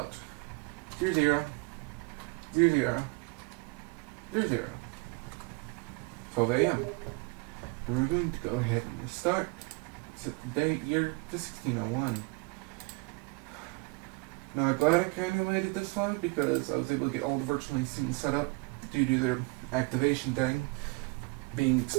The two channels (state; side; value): quieter; left; 28.5 dB